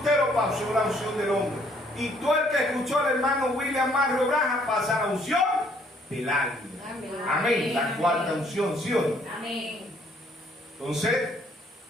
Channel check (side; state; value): both; normal; correlation 0.64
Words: pasó la unción del hombre. Y todo el que escuchó al hermano William Mario Branham pasa la unción del águila. Amén. Amén. La cuarta unción, ¿sí o no? Amén. Entonces,